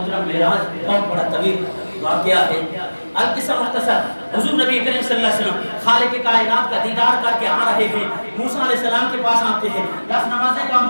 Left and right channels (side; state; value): both; inverted; correlation -1.00